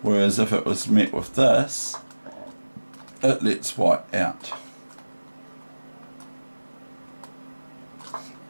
whereas if it was met with this, it lets white out.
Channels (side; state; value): both; inverted; correlation -1.00